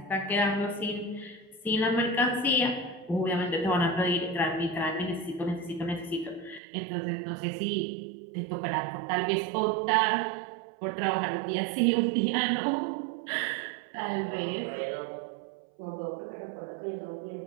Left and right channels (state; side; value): drops out; left; at 6.6 s